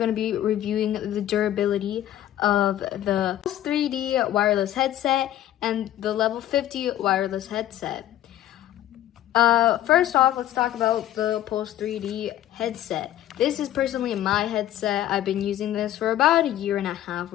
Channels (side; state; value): right; quieter; 12.7 dB